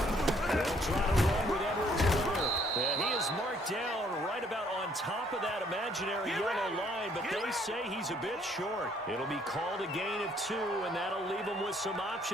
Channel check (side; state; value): both; normal; correlation 0.64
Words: try to run with Edwards-Helaire. And he is marked down right about on top of that imaginary yellow line, but they say he's a bit short. It'll be called a gain of 2, and that'll leave them with some